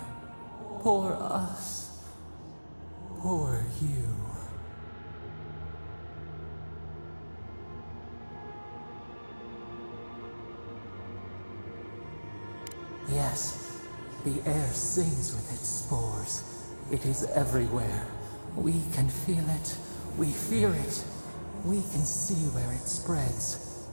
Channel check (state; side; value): inverted; both; correlation -1.00